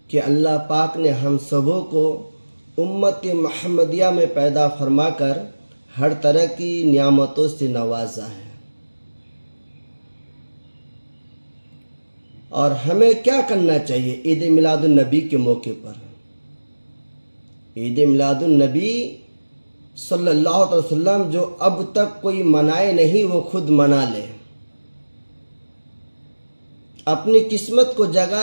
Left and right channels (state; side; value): inverted; both; correlation -1.00